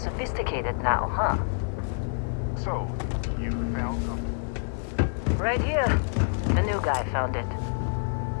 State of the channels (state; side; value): silent; right; 60 dB below the other